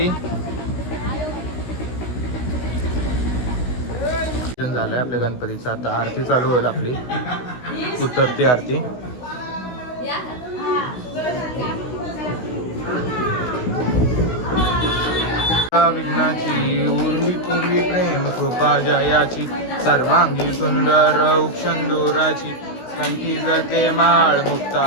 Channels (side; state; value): right; late; 16 ms